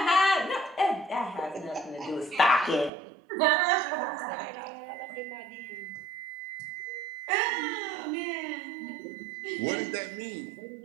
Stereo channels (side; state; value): left; drops out; at 2.9 s